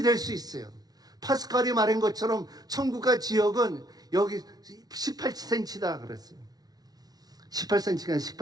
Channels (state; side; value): late; left; 0.19 ms